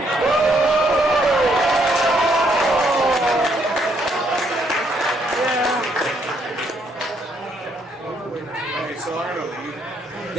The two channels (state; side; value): normal; both; correlation 0.72